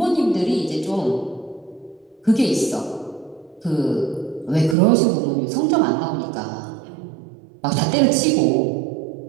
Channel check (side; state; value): left; drops out; at 4.8 s